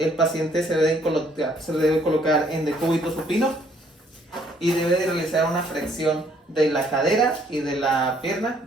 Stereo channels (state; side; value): normal; both; correlation 0.65